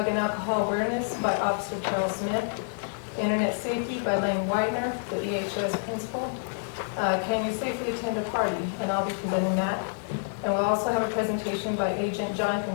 and alcohol awareness by Officer Charles Smith, internet safety by Lane Widener, the EHS principal. Can you safely attend a party? And I'll be presenting that. And we'll also have a presentation by Agent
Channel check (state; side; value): silent; right; digital silence